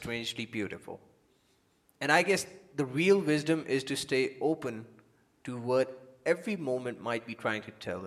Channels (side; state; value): both; identical; correlation 1.00